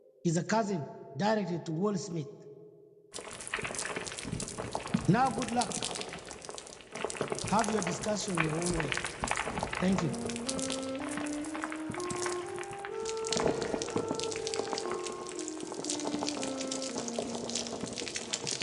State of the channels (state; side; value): identical; both; correlation 1.00